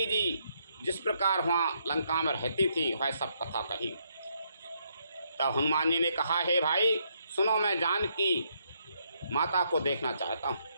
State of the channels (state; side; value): inverted; both; correlation -0.75